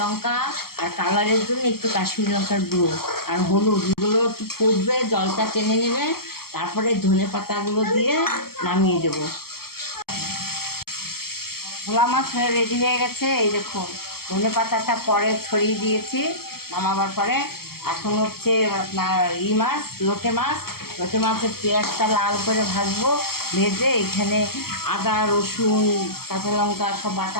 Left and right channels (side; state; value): right; late; 0.94 ms